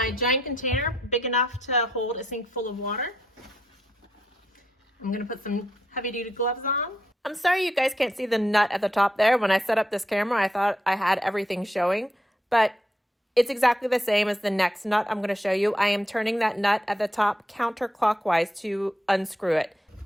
giant container, big enough to hold a sink full of water. I'm going to put some heavy-duty gloves on. I'm sorry you guys can't see the nut at the top there. When I set up this camera, I thought I had everything showing, but it's exactly the same as the next nut I'm going to show you. I am turning that nut at the top counterclockwise to unscrew it.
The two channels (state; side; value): normal; both; correlation 0.79